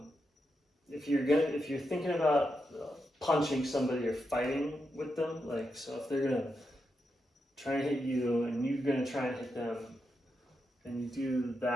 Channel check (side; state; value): both; normal; correlation 0.85